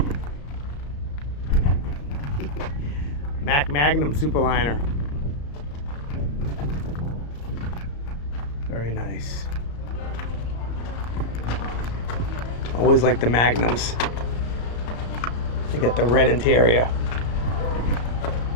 Mack Magnum Superliner. Very nice. Always like the Magnums. They got the red interior.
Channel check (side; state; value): right; late; 34 ms